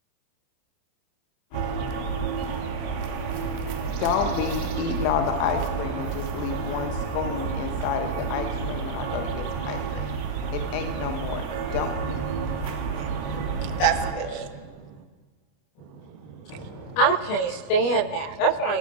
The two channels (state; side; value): late; right; 28 ms